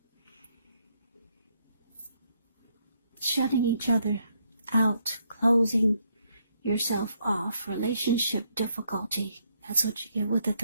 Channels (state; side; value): inverted; both; correlation -0.74